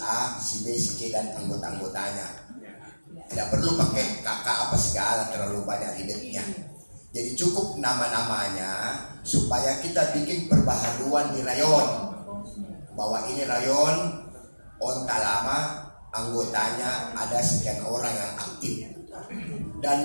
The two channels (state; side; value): inverted; both; correlation -1.00